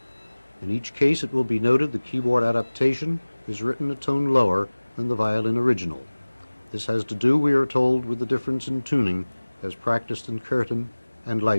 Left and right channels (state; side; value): inverted; both; correlation -1.00